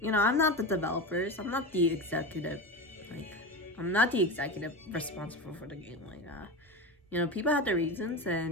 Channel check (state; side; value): normal; both; correlation 0.23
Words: I'm not the developers. I'm not the executive. I'm not the executive responsible for the game like that. People have their reasons,